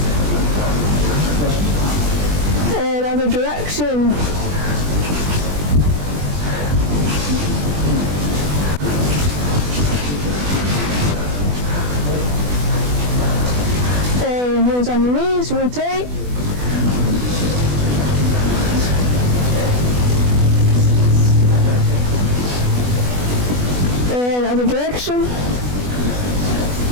And other direction. And hands on your knees, rotate. And other direction.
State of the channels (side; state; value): left; late; 20 ms